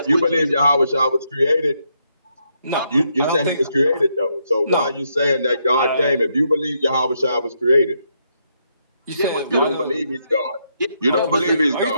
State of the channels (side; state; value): both; inverted; correlation -0.78